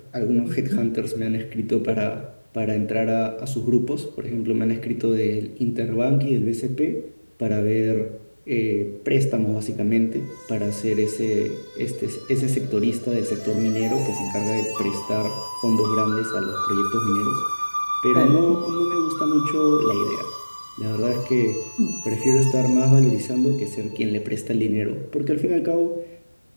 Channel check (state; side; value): inverted; both; correlation -1.00